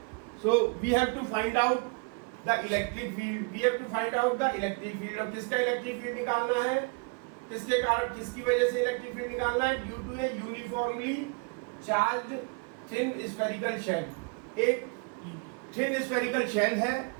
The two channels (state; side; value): quieter; left; 33.8 dB